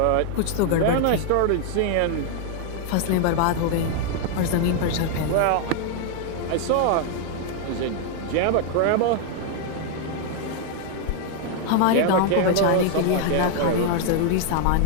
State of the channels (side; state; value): both; different; correlation 0.00